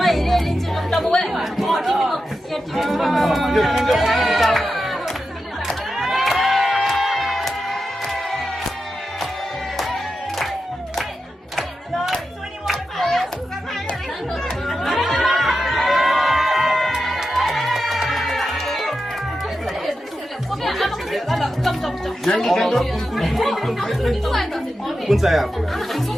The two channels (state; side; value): normal; both; correlation 0.90